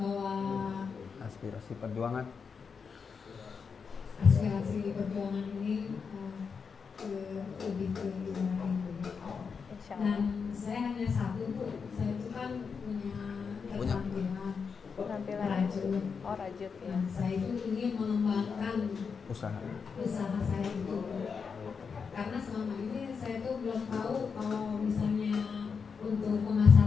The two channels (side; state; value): right; quieter; 5.8 dB